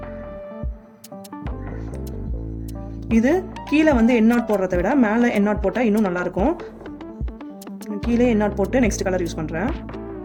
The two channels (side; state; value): both; identical; correlation 1.00